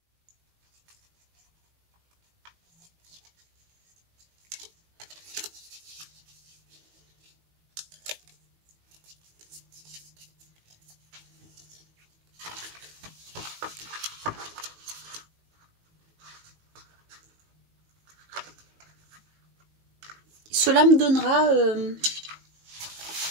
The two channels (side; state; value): left; late; 19 ms